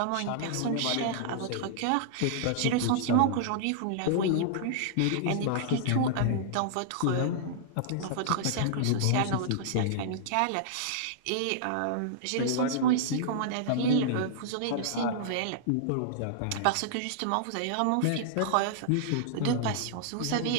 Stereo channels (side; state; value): both; different; correlation -0.01